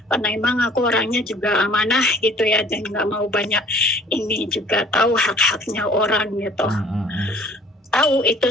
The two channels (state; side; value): normal; both; correlation 0.52